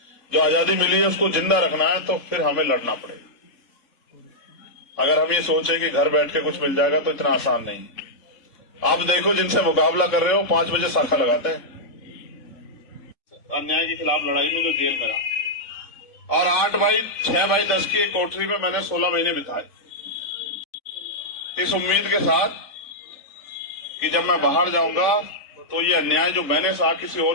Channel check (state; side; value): late; right; 3.5 ms